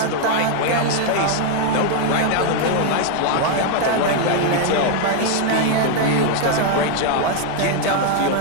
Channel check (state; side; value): different; both; correlation 0.00